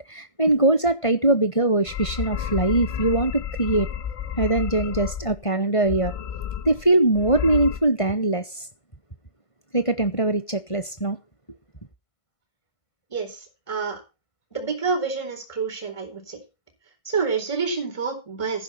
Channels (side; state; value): right; late; 1.5 ms